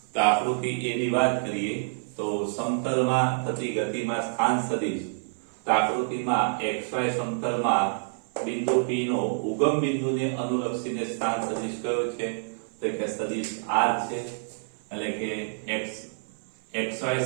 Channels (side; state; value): left; silent; 57 dB below the other